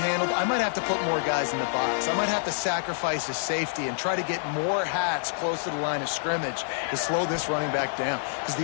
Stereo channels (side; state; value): right; silent; 60 dB below the other